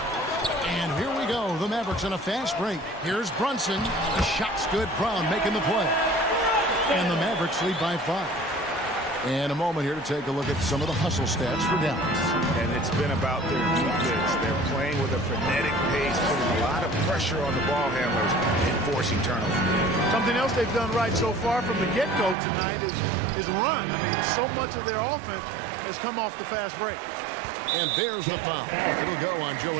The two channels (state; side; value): drops out; left; at 22.4 s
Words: And here we go. The Mavericks on a fast break. Here's Brunson. The shot's good. Brown making the play. And the Mavericks lead by 5. And a moment here to take a look at some of the hustle stats for Dallas. And it's been about their defense. They're playing with a frenetic pace, putting a lot of pressure on the ball handlers and forcing turnovers. Something else they've done right so far from the get-go tonight is run. I mean, so much of their offense has come off the fast break. And there's the foul. It'll go on Joe